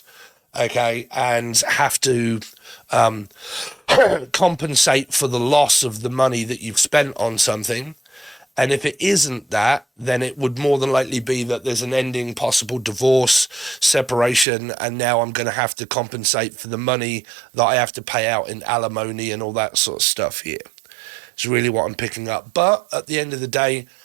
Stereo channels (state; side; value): drops out; left; at 14.5 s